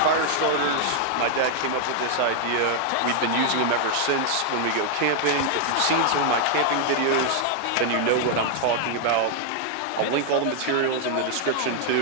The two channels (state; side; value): different; both; correlation 0.00